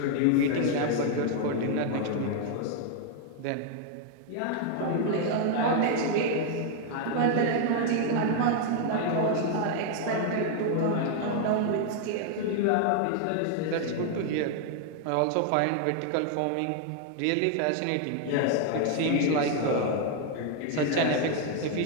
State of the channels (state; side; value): different; both; correlation 0.00